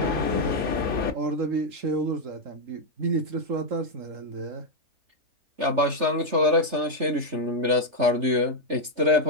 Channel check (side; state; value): left; late; 3.3 ms